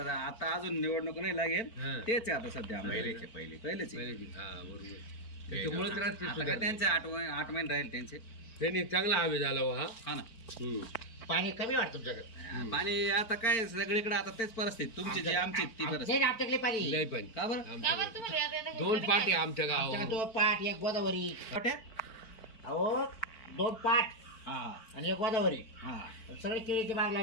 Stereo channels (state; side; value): late; right; 4.4 ms